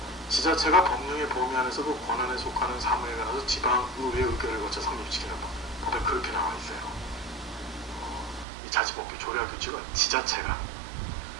지자체가 법령의 범위 안에서 그 권한에 속하는 사무에 관해서 지방의회 의결을 거쳐 성립시키는 법. 법에 그렇게 나와 있어요. 이 자치법규 조례와 규칙은 지자체가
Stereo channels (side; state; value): left; drops out; at 8.5 s